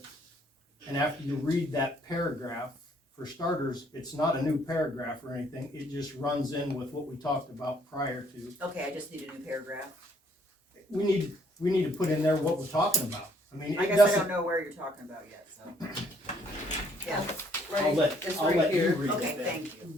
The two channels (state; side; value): normal; both; correlation 0.66